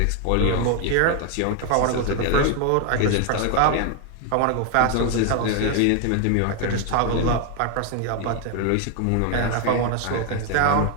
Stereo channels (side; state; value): both; different; correlation 0.01